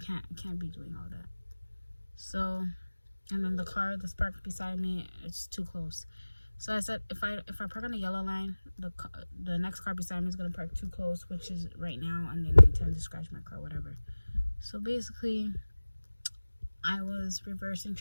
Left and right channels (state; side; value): inverted; both; correlation -1.00